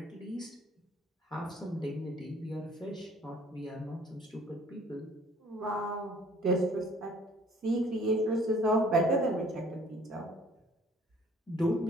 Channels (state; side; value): normal; both; correlation 0.55